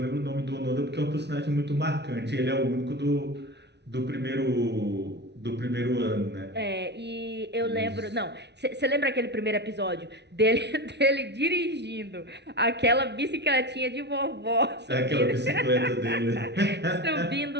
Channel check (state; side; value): late; left; 0.50 ms